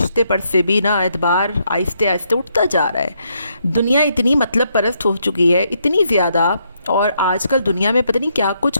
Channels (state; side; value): inverted; both; correlation -0.75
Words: पर से भी ना एतबार आहिस्ते आहिस्ते उठता जा रहा है। दुनिया इतनी मतलब परस्त हो चुकी है, इतनी ज़्यादा, और आजकल दुनिया में पता नहीं क्या कुछ